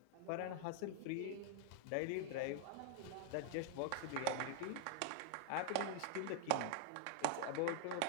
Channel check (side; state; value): both; different; correlation 0.00